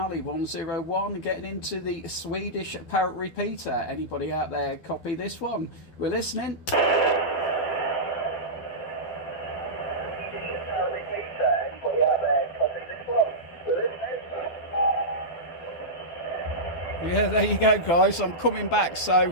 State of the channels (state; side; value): late; right; 12 ms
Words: 101 getting into the Swedish Parrot repeater. Anybody out there copy this one? We're listening. Yeah, there you go, guys. I'm coming back.